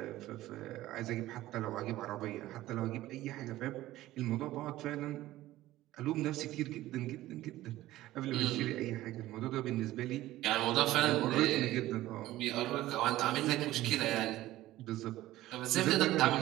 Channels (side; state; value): left; quieter; 15.8 dB